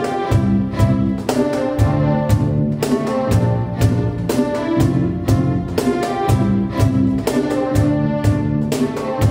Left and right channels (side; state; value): both; identical; correlation 1.00